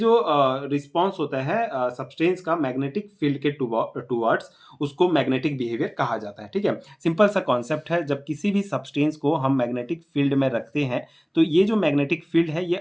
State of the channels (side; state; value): both; identical; correlation 1.00